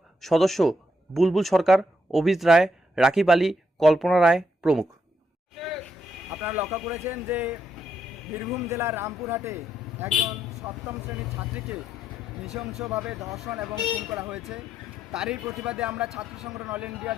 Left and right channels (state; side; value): normal; both; correlation 0.77